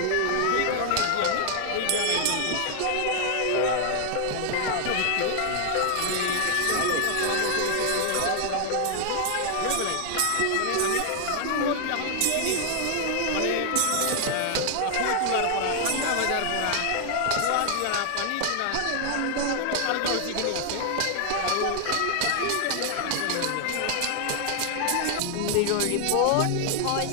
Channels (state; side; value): different; both; correlation 0.00